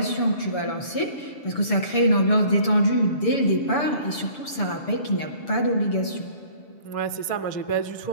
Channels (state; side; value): late; right; 6.9 ms